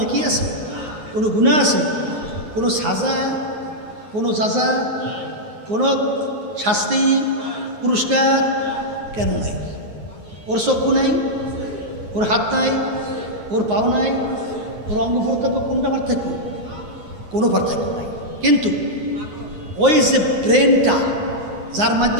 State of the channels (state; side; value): late; left; 9.5 ms